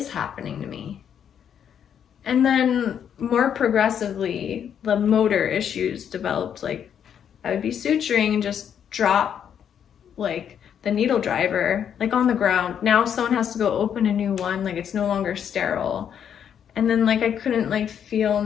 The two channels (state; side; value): quieter; right; 8.6 dB